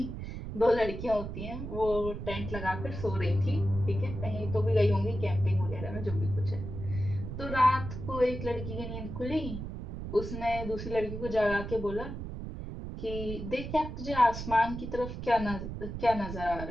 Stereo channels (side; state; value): right; noise; rumble, 7 dB below the sound